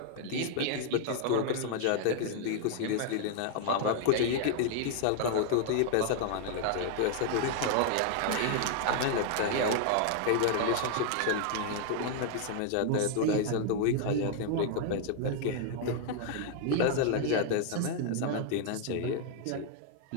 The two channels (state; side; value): different; both; correlation 0.00